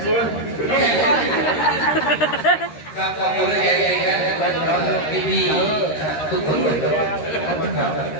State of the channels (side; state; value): right; late; 13 ms